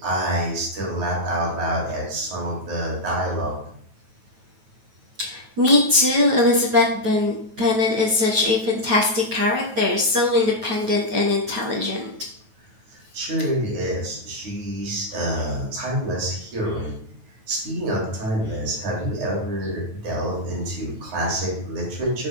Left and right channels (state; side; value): late; left; 9.2 ms